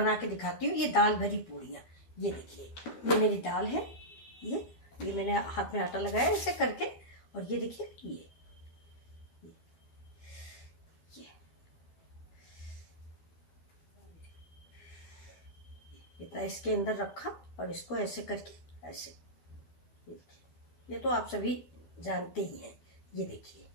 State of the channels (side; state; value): right; late; 12 ms